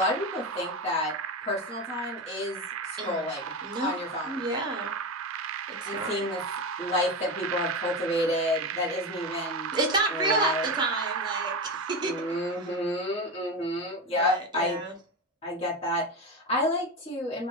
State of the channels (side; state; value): both; normal; correlation 0.19